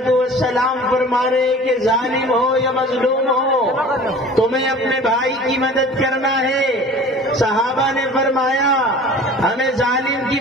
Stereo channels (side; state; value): both; normal; correlation 0.43